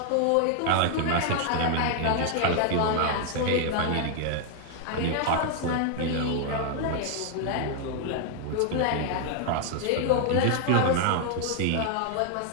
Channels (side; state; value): both; different; correlation 0.00